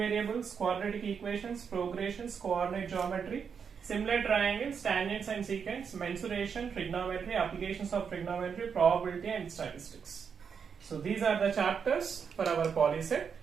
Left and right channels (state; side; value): quieter; left; 6.6 dB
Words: variables, quadratic equations, progressions, coordinate geometry, similar triangles, tangents and secants, mensuration, trigonometry, applications of trigonometry, probability and statistics. So these are the chapters for our polyset.